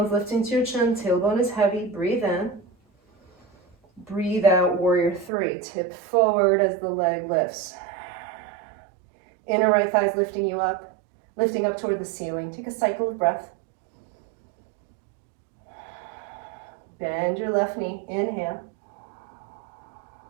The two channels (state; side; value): drops out; left; at 5.3 s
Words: lifting to your chin, tailbone is heavy, breathe in. Breathe out, warrior three. Tip forward as the leg lifts. Inner right thigh is lifting you up, lifting up toward the ceiling. Take a cycle of breath. Bend your left knee, inhale.